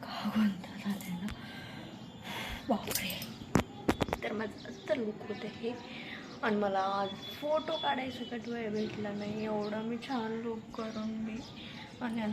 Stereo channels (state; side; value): identical; both; correlation 1.00